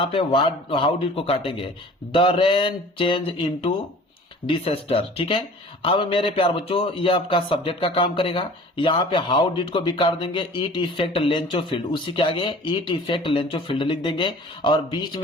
पे हाउ डिड को काटेंगे, the rain change into disaster, ठीक है। अब मेरे प्यार बच्चों ये आपका सब्जेक्ट का काम करेगा। यहाँ पे हाउ डिड को भी काट देंगे, इट इफेक्ट लेंचोफील्ड, उसी के आगे इट इफेक्ट लेंचोफील्ड लिख देंगे। और बीच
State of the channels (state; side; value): normal; both; correlation 0.45